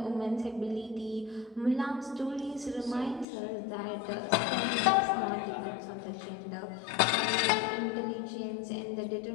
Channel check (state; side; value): drops out; right; at 3.2 s